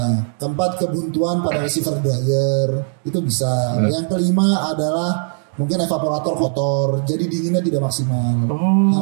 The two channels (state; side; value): silent; left; 60 dB below the other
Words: Keempat kebuntuan pada receiver dryer itu bisa. Yang kelima adalah mungkin evaporator kotor, jadi dinginnya tidak maksimal.